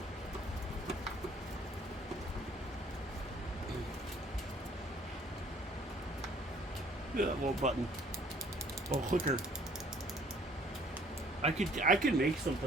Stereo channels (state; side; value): normal; both; correlation 0.59